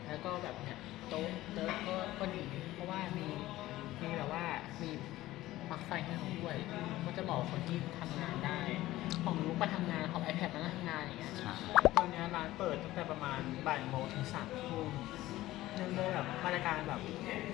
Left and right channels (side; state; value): right; quieter; 16.3 dB